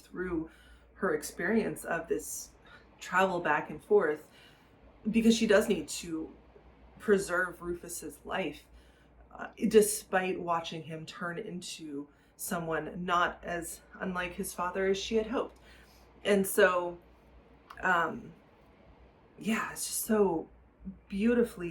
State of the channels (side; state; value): both; identical; correlation 1.00